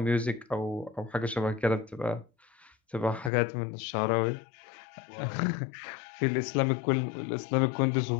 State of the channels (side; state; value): right; drops out; at 3.3 s